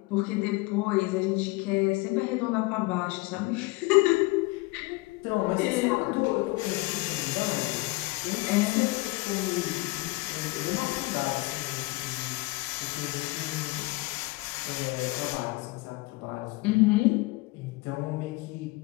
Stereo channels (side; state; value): right; quieter; 22.5 dB